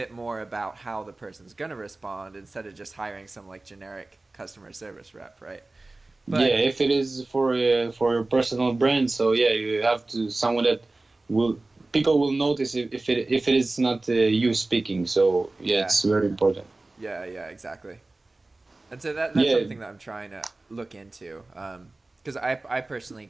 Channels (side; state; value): left; quieter; 3.1 dB